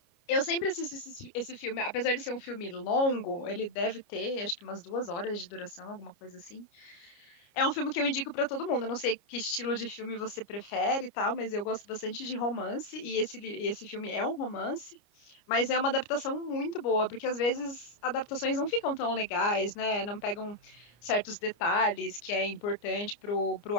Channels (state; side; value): late; right; 29 ms